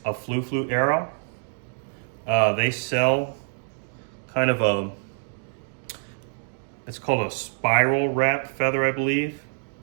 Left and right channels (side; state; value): left; silent; digital silence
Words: a flu arrow. They sell kind of a, it's called a spiral wrap feather, I believe.